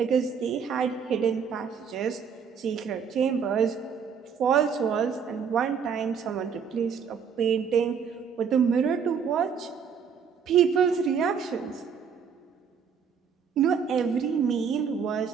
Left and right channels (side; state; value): left; quieter; 6.7 dB